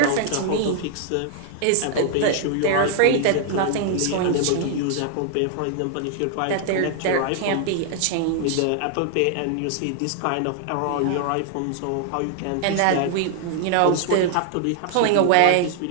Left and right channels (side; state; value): both; different; correlation 0.00